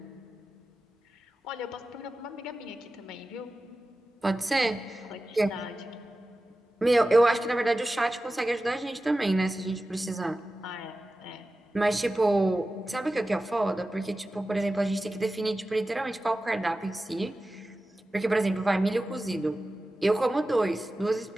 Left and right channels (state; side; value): normal; both; correlation 0.95